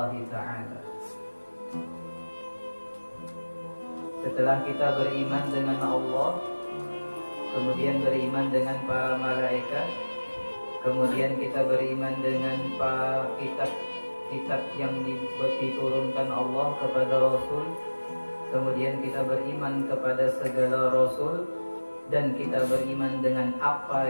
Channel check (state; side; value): inverted; both; correlation -1.00